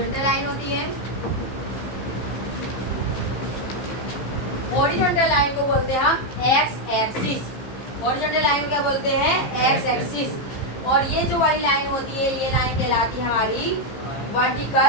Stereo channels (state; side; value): late; right; 15 ms